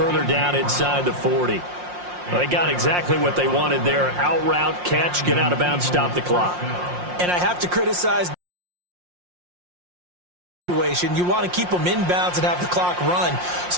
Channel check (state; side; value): late; left; 5.6 ms